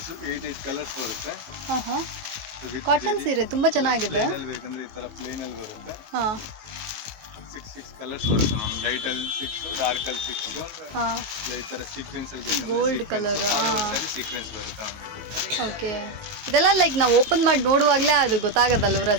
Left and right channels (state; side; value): late; left; 19 ms